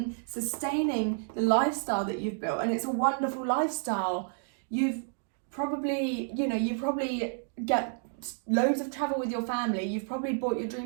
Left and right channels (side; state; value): left; silent; 58 dB below the other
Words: sustaining the lifestyle that you've built? And it's a wonderful lifestyle. You probably get loads of travel with your family. You've probably bought your